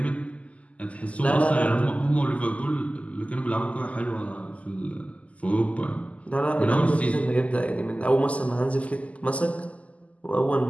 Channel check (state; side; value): late; right; 0.068 ms